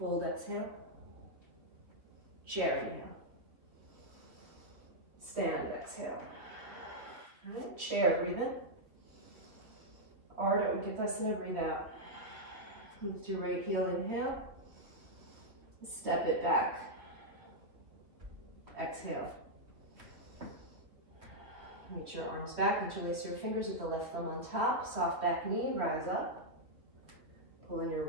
exhale. Chair, inhale. Stand, exhale. All right, chair, breathe in. Ardha Uttanasana, breathe out. Lift your right heel, inhale. Step it back. Exhale. Reach your arms back, interlace your fingers with the left thumb on top. Soft back knee, rise up. Pull in your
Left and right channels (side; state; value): left; late; 2.9 ms